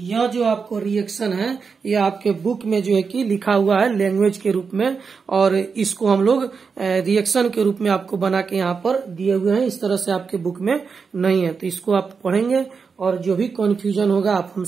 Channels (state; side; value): quieter; left; 5.4 dB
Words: जो आपको रिएक्शन है ये आपके बुक में जो है कि लिखा हुआ है लैंग्वेज के रूप में, और इसको हम लोग रिएक्शन के रूप में आपको बना के यहाँ पर दिए हुए हैं। इस तरह से आपके बुक में नहीं है, तो इसको आप पढ़ेंगे और जो भी कन्फ्यूजन होगा आप